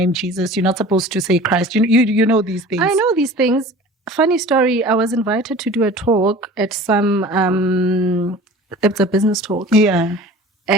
Jesus. You're not supposed to say Christ. You know these things. I know these things. Funny story. I was invited to do a talk at some. It's a business talk. Yeah.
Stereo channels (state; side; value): normal; both; correlation 0.42